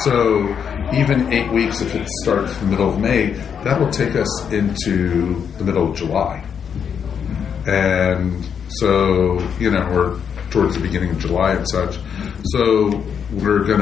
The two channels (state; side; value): quieter; right; 7.4 dB